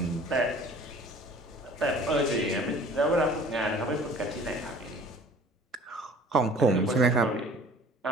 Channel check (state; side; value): normal; both; correlation 0.49